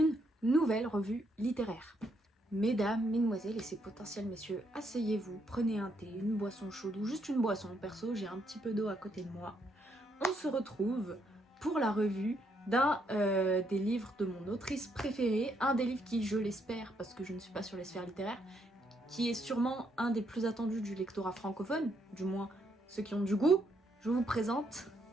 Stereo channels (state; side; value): normal; both; correlation 0.75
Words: nouvelle revue littéraire. Mesdames, mesdemoiselles et ces potentiels messieurs, asseyez-vous, prenez un thé, une boisson chaude ou juste une boisson. Perso, j'ai un petit peu d'eau à côté de moi. On se retrouve pour la revue d'un des livres de mon autrice préférée, un des livres qui, je l'espère, parce que je ne suis pas sur les sphères littéraires, qui est sûrement un des plus attendus du lectorat francophone, du moins ceux qui ont du goût. Je vous présente